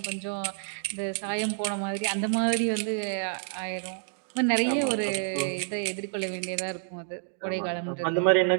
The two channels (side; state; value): left; silent; 59 dB below the other